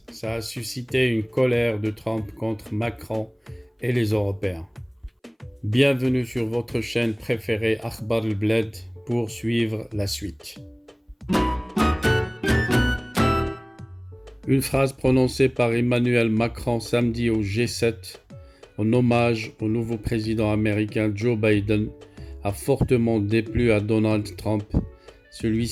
a suscité une colère de Trump contre Macron et les Européens. Bienvenue sur votre chaîne préférée Akhbar al-Bled pour suivre la suite. Une phrase prononcée par Emmanuel Macron samedi au G7 en hommage au nouveau président américain Joe Biden a fortement déplu à Donald Trump.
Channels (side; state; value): both; identical; correlation 1.00